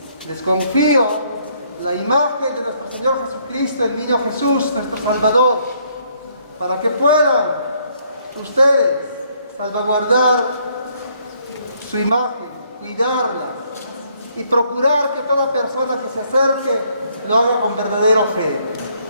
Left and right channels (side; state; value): both; inverted; correlation -0.68